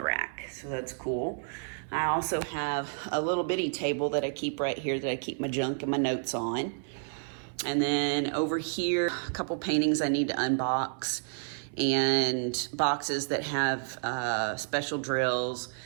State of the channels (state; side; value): silent; left; 58 dB below the other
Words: rack. So that's cool. I also have a little bitty table that I keep right here that I keep my junk and my notes on. And then over here, a couple paintings I need to unbox, and boxes that have special drills.